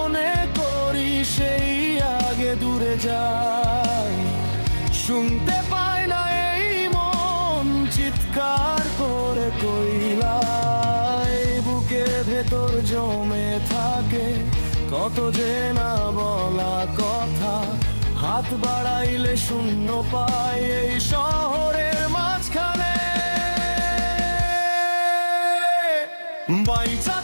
করি সেই আগে দূরে যায়, শুনতে পায় না এই মন চিৎকার করে কইলাই। বুকের ভেতর জমে থাকে কত যে না বলা কথা, হাত বাড়াইলে শূন্য পাই এই শহরের মাঝখানে। বাইচা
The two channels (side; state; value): both; inverted; correlation -1.00